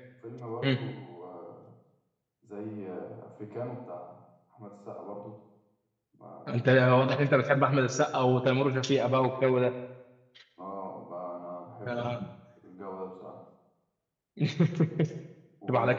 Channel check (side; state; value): both; identical; correlation 1.00